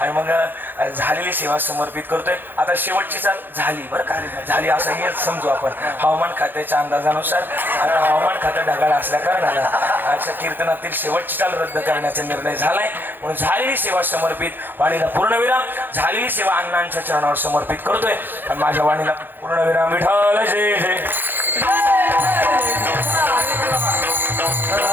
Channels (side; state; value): left; late; 0.094 ms